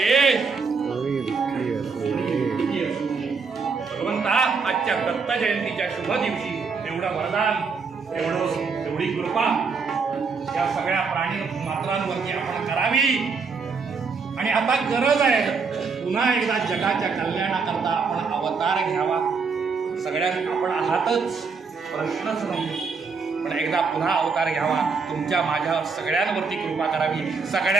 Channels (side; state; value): left; quieter; 5.0 dB